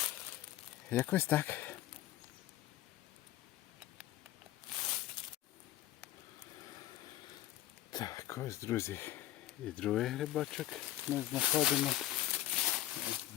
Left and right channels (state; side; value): quieter; right; 14.2 dB